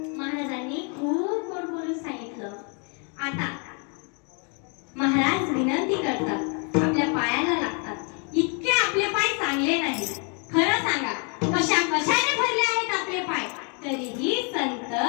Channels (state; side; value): quieter; right; 37.0 dB